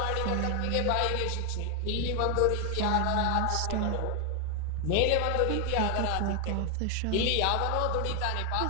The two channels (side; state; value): both; different; correlation 0.01